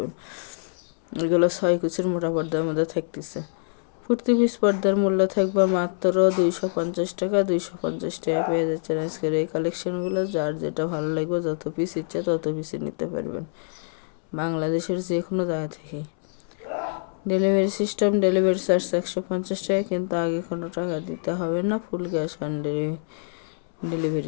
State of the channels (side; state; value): right; silent; 61 dB below the other